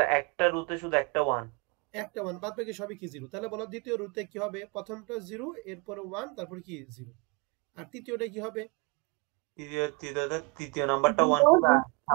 একটা রুতে শুধু একটা 1। একটা 1 বাদ বাকি সবই কি 0। তাহলে বলো দ্বিতীয় রুতে কি হবে? প্রথমটা 0 এরপরে 1 তারপর কি 0। আর তৃতীয়টা কি হবে? তৃতীয় নাম্বারটা 1 হবে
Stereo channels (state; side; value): quieter; left; 28.8 dB